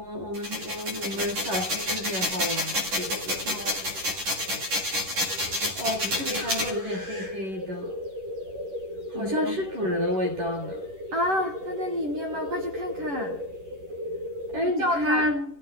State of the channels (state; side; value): late; left; 11 ms